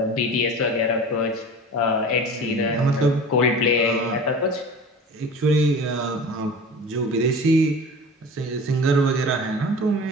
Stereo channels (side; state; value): both; normal; correlation 0.37